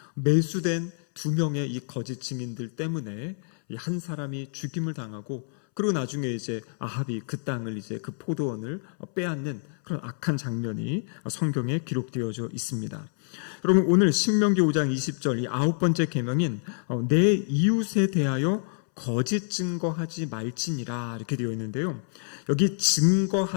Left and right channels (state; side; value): silent; right; 60 dB below the other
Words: 매수된 2명의 이 거짓 증인들 때문에 한 사람이 죽임을 당하고, 그리고 나중에 이제 아합이 그 땅을 이제 그 포도원을 빼앗는 그런 악한 장면이 성경에 기록되어져 있습니다. 여러분, 오늘 신명기 5장 20절 이 9번째 계명인 내 이웃에 대하여 거짓 증거하지 말지니라 이렇게 되어 있는데요. 여기